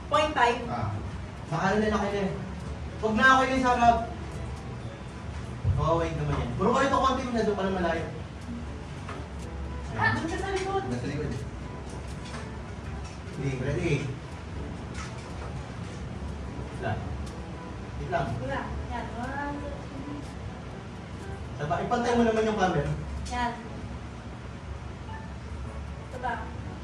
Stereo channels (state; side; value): identical; both; correlation 1.00